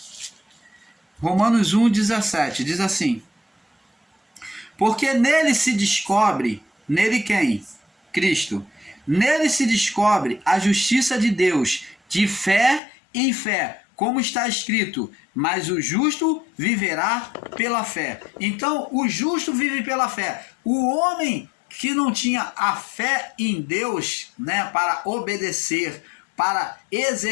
Romanos 1, 17, diz assim: porque nele se descobre, nele quem? Cristo. Nele se descobre a justiça de Deus, de fé em fé, como está escrito, mas o justo viverá pela fé. Então, o justo vive pela fé. O homem que não tinha a fé em Deus, né, para obedecer, para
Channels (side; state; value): right; drops out; at 12.8 s